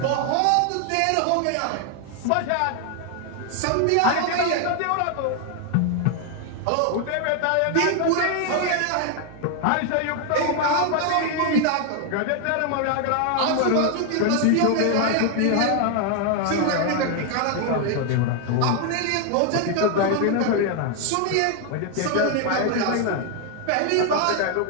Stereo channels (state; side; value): different; both; correlation 0.01